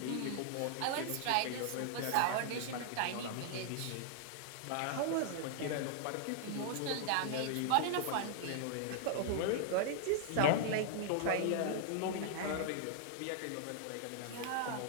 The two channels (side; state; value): both; different; correlation -0.01